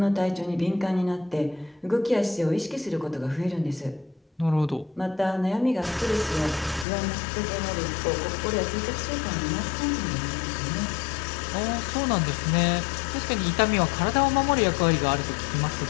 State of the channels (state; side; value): drops out; right; at 6.9 s